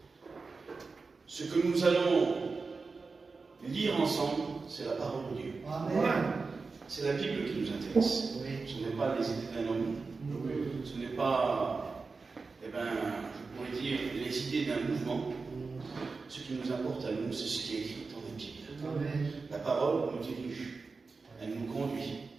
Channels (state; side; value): quieter; left; 4.3 dB